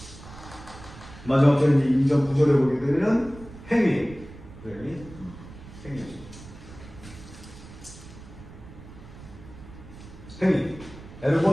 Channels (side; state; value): right; noise; rumble, 17 dB below the sound